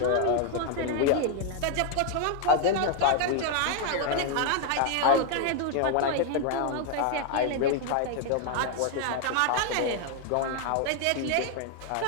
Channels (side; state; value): both; different; correlation 0.00